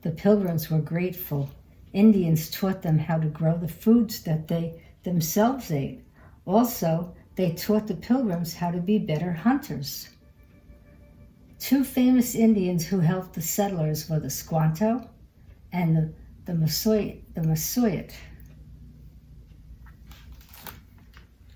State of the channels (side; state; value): both; identical; correlation 1.00